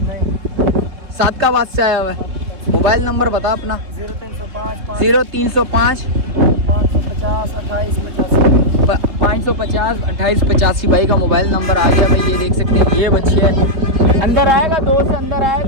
सादकाबाद से आया हुआ है। मोबाइल नंबर बता अपना। 0305 550 2885 भाई का मोबाइल नंबर आ गया भाई। ये देख सकते हैं ये बच्चे है। अंदर आएगा 2 से अंदर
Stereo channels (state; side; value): late; left; 3.1 ms